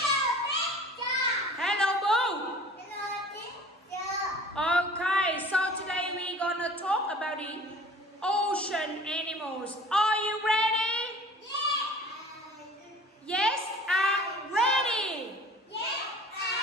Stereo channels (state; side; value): normal; both; correlation 0.45